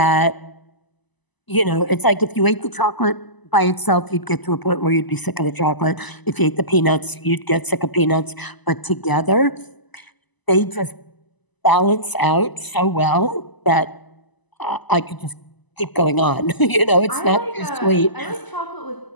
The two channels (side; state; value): right; late; 1.0 ms